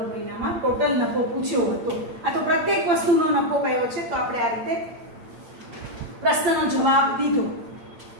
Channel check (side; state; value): left; late; 8.8 ms